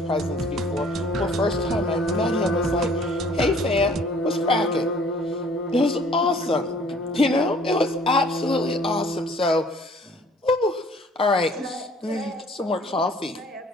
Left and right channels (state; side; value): normal; both; correlation 0.55